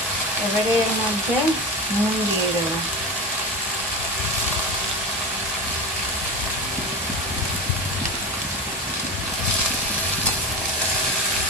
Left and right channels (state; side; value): normal; both; correlation 0.24